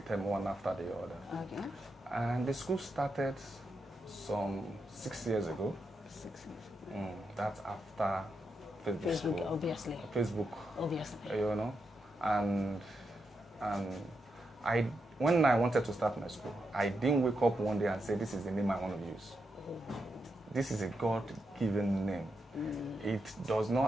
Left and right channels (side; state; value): both; normal; correlation 0.85